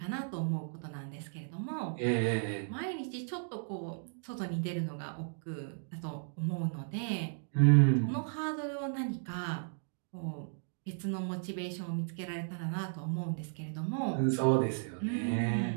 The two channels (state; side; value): silent; left; digital silence